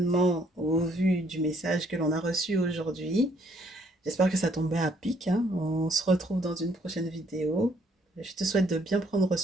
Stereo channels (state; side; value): normal; both; correlation 0.66